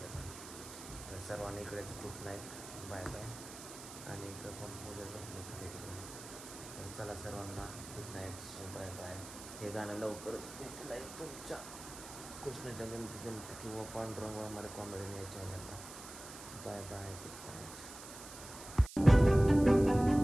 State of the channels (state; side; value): noise; right; hiss, 13 dB below the sound